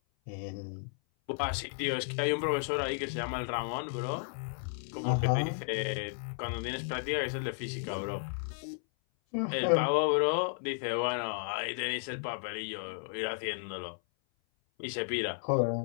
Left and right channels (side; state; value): right; silent; 55 dB below the other